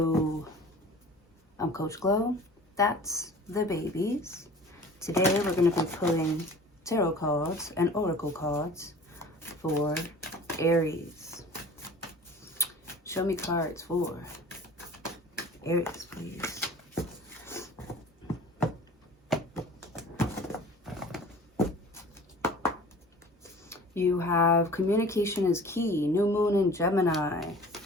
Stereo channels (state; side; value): normal; both; correlation 0.44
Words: I'm Coach Glow. That's the babies. Today we're going to be pulling tarot cards and oracle cards for Aries. Show me cards for Aries, please. You have communication is key. New moon in Gemini.